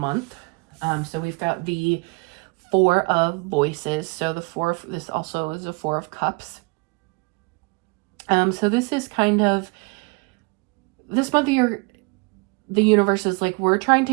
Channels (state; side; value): quieter; left; 30.3 dB